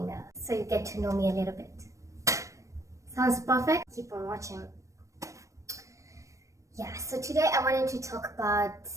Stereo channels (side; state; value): left; late; 0.15 ms